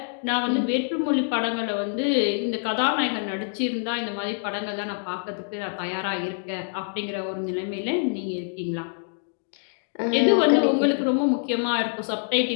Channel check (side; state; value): right; silent; digital silence